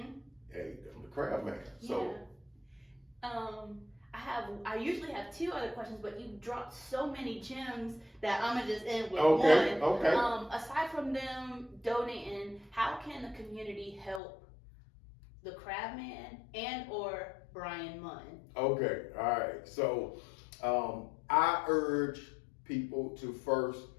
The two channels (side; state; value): right; drops out; at 14.2 s